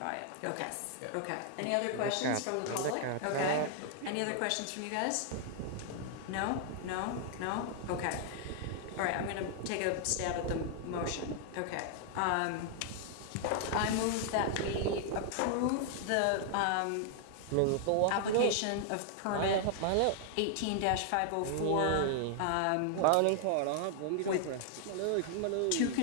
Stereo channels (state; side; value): different; both; correlation 0.00